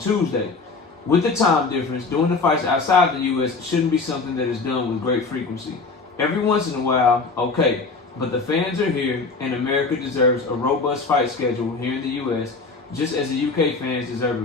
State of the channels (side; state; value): right; quieter; 4.1 dB